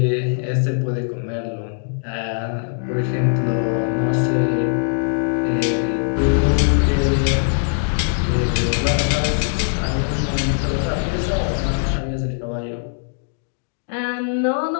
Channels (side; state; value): right; silent; digital silence